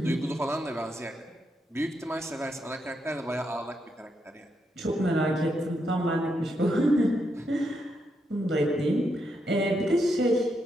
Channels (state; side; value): normal; both; correlation 0.81